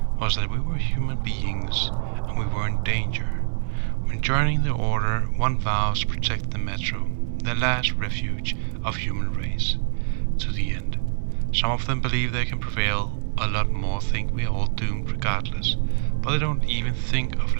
was that we were human beings and we were in danger. When joining the Order, one vows to protect the Metro, the last refuge of human race, to the end. Some of them believe they can prevail, a lot more think we are all doomed regardless, but they don't even think of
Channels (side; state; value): left; silent; digital silence